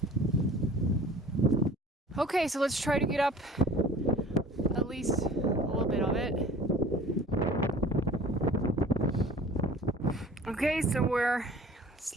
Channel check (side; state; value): both; normal; correlation 0.47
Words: Okay, so let's try to get up at least a little bit of it. Okay, so we're